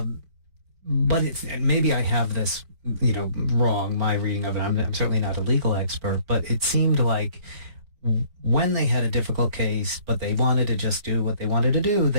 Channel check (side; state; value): left; late; 4.5 ms